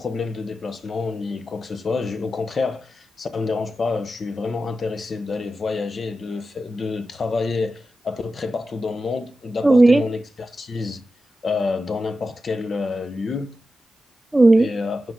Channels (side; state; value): both; normal; correlation 0.91